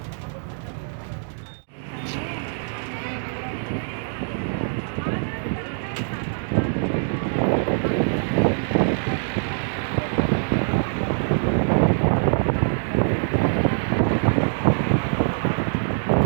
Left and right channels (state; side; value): silent; left; digital silence